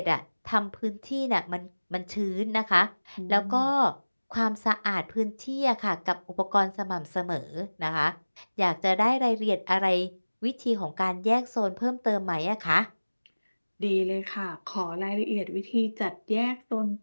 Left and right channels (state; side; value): inverted; both; correlation -1.00